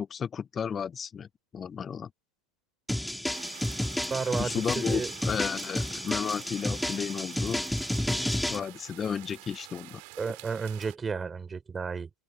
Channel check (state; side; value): normal; both; correlation 0.88